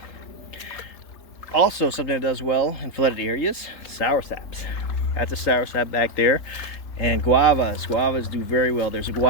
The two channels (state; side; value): late; right; 3.8 ms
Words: Also, something that does well in flooded areas, soursaps. That's a soursap back there. And guavas. Guavas do very well. There's a